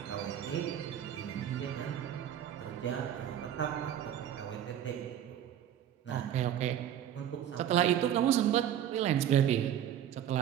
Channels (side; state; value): left; quieter; 10.3 dB